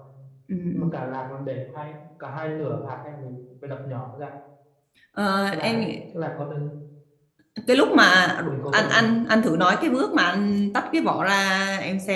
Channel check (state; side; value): identical; both; correlation 1.00